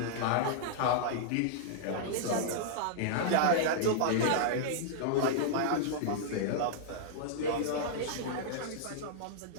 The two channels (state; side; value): different; both; correlation -0.01